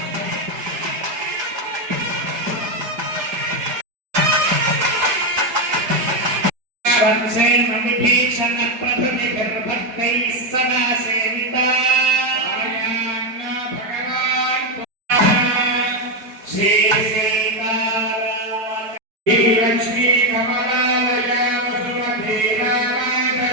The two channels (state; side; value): late; left; 4.7 ms